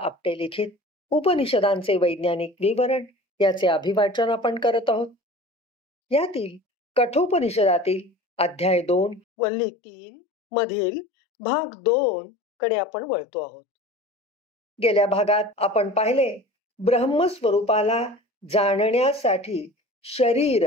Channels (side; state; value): both; normal; correlation 0.40